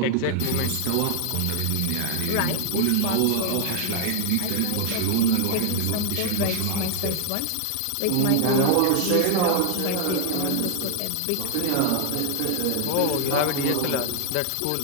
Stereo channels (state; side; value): different; both; correlation 0.00